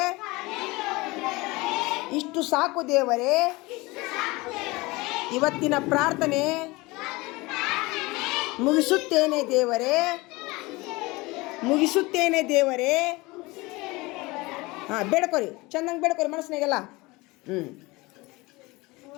ಇಷ್ಟು ಸಾಕು ದೇವರೇ. ಇವತ್ತಿನ ಪ್ರಾರ್ಥನೆ ಮುಗಿಸುತ್ತೇನೆ ದೇವರೇ. ಹಾಂ, ಬೇಡ್ಕೊರಿ, ಚೆನ್ನಾಗಿ ಬೇಡ್ಕೊರಿ ಮನಸ್ಸಿನಾಗೆಲ್ಲ.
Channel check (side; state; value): right; quieter; 22.8 dB